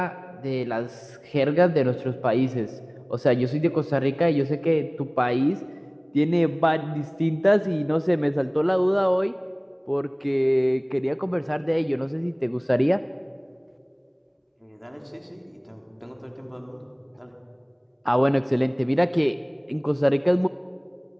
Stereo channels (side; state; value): both; identical; correlation 1.00